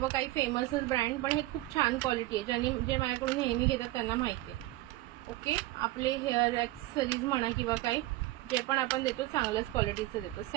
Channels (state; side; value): quieter; left; 17.9 dB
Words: काही फेमसच ब्रँड, पण हे खूप छान क्वालिटी आहे. जे माझ्याकडून नेहमी घेतात त्यांना माहिती आहे. ओके, आपले हेअर ॲक्सेसरीज म्हणा किंवा काही जे पण आपण देतो चांगल्याच क्वालिटीचं देतो.